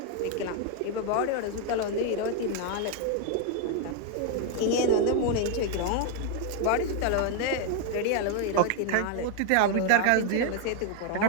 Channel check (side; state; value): both; different; correlation 0.01